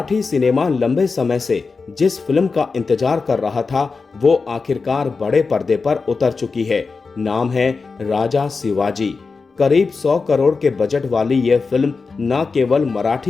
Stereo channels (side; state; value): right; quieter; 4.5 dB